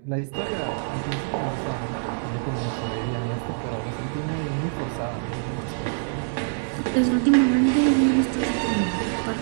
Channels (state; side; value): silent; left; 62 dB below the other